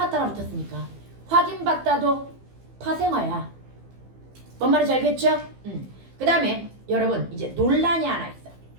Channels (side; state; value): left; late; 15 ms